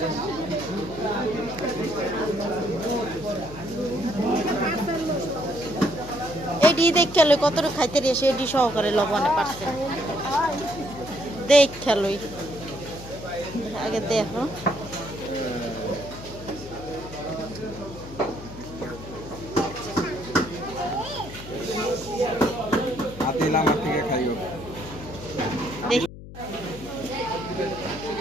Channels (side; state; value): left; noise; hum, 14 dB below the sound